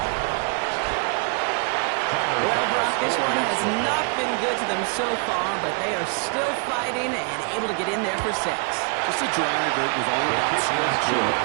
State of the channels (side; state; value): left; quieter; 38.5 dB